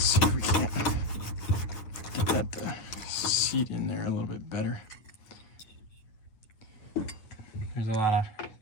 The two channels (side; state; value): right; late; 9.2 ms